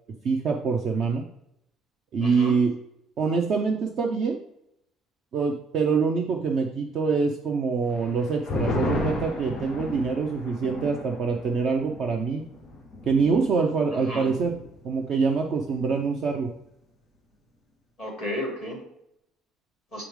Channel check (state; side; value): quieter; left; 4.1 dB